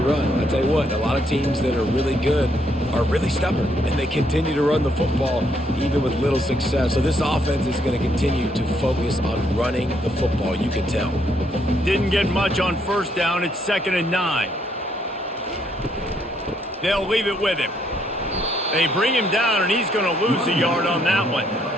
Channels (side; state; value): both; normal; correlation 0.72